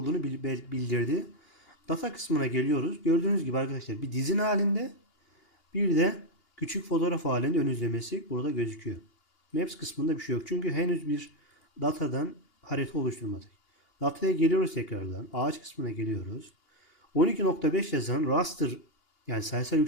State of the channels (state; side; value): late; right; 2.8 ms